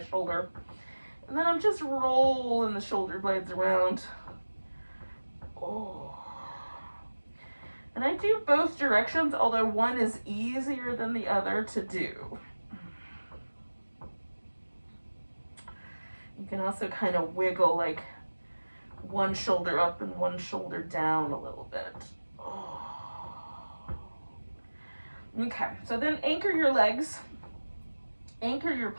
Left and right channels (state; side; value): inverted; both; correlation -1.00